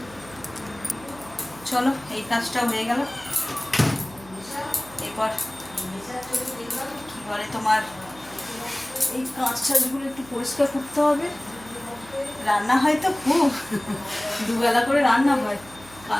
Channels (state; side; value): noise; right; hum, 21 dB below the sound